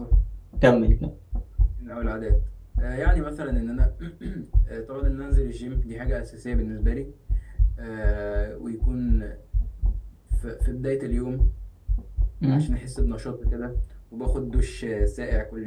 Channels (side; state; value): both; identical; correlation 1.00